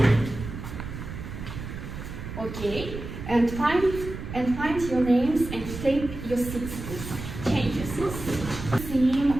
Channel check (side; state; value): right; noise; rumble, 9 dB below the sound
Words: Okay. And find your names and take your seats, please. Change your seats. Theme